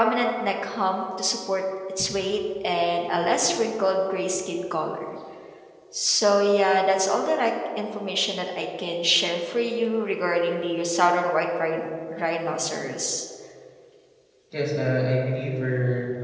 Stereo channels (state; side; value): identical; both; correlation 1.00